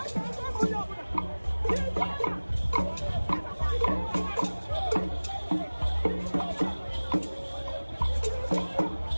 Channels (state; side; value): inverted; both; correlation -1.00